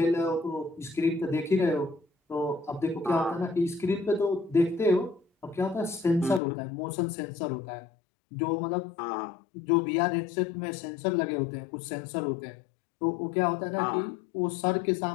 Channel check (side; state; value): right; drops out; at 6.4 s